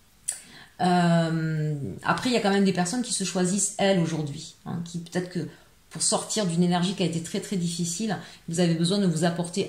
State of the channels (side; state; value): both; identical; correlation 1.00